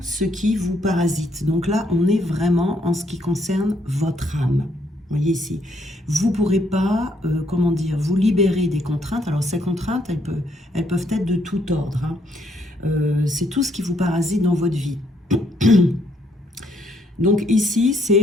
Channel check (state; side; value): normal; both; correlation 0.71